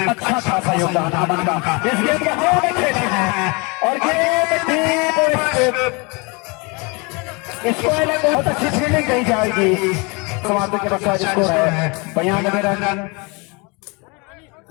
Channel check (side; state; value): right; quieter; 29.3 dB